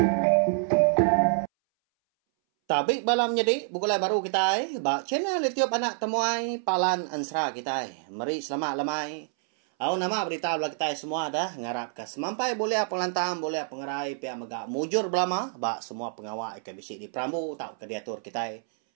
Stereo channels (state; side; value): silent; left; 60 dB below the other